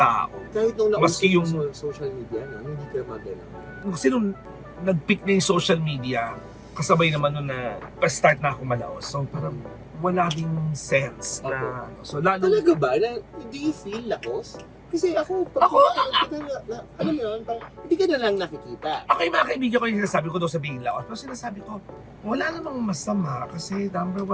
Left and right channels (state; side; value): identical; both; correlation 1.00